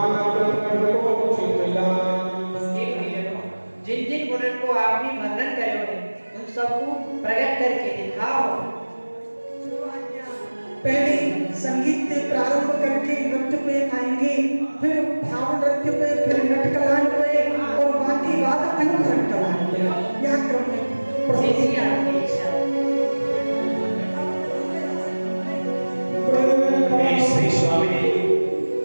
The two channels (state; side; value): inverted; both; correlation -1.00